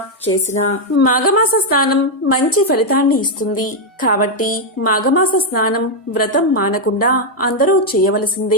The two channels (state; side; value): normal; both; correlation 0.01